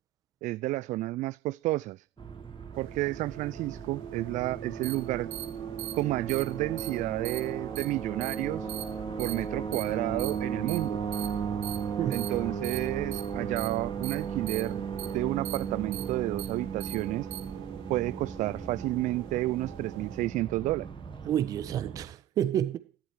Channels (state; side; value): quieter; left; 11.7 dB